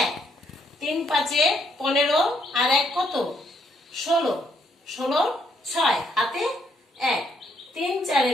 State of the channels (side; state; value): both; normal; correlation 0.71